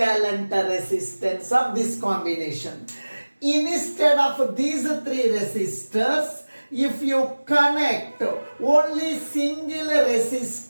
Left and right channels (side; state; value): both; inverted; correlation -1.00